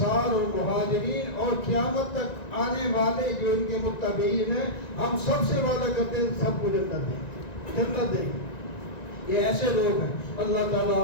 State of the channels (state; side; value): late; right; 1.9 ms